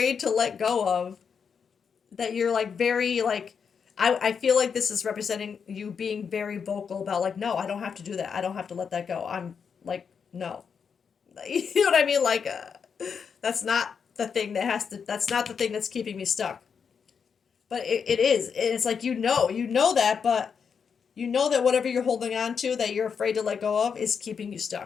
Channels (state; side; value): quieter; right; 6.5 dB